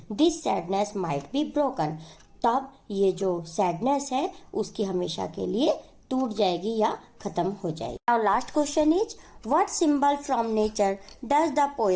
this sadness might be broken, तब ये जो सैडनेस है उसकी हमेशा के लिए टूट जाएगी या खत्म हो जाएगी। Now last question is, what symbol from nature does the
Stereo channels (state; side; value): identical; both; correlation 1.00